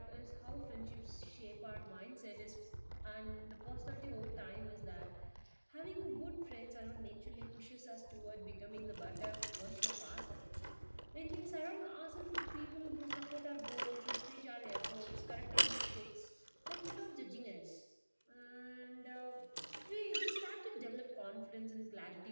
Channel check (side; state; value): both; inverted; correlation -1.00